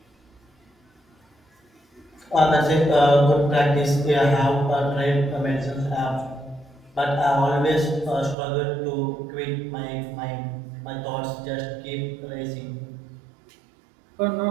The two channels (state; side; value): drops out; left; at 8.3 s